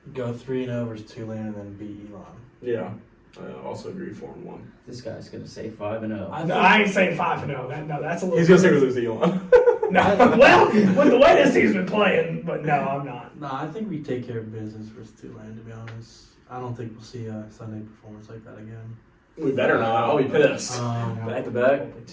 Go 3-0 versus Tulane, and then beat Elon. Yeah, I also agree 4-1. This guy's gonna say 5-0. I ain't saying 5-0. That's a little. He's gonna say we lose to Elon. No, well, with the way this team's been playing, but no, I'm not. No, I think we take care of business versus Tulane, to be honest. I don't think we'll see a Sunday performance like that again. We better not. I'll be pissed. Back to back. Probably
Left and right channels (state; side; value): identical; both; correlation 1.00